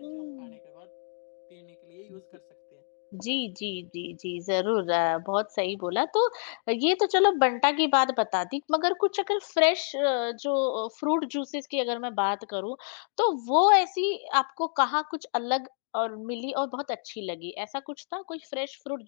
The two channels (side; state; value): right; silent; digital silence